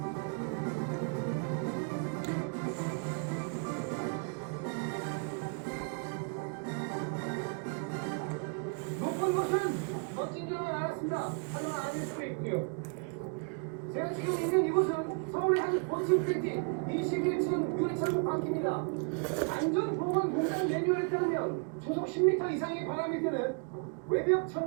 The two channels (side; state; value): left; quieter; 37.6 dB